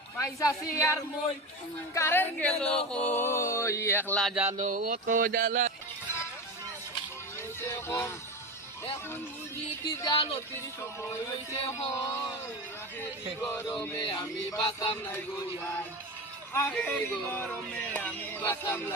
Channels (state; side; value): normal; both; correlation 0.24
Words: পয়সাছি আর মই কারেন্ট গেল কই একলা জানো অত জ্বালা এখন বুঝি কি জালো তির সময় হইছে হয় গরমে আমি বাঁচতাম নাই গইয়াই আখেরি গরমে আমি বাঁচতাম